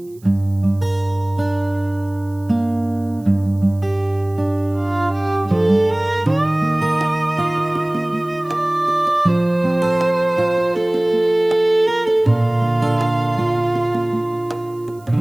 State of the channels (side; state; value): right; noise; hiss, 29 dB below the sound